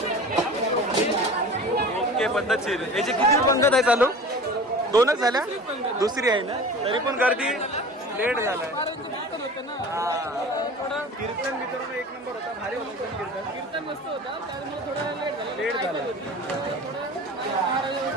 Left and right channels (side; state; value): both; normal; correlation 0.38